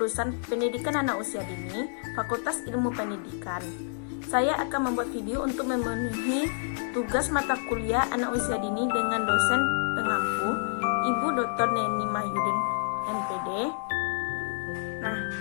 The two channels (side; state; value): right; silent; digital silence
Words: Pendidikan Anak Usia Dini, Fakultas Ilmu Pendidikan. Saya akan membuat video untuk memenuhi tugas mata kuliah anak usia dini dengan dosen pengampu, Ibu Dr. Neni Mahyudin, MPD. Nah,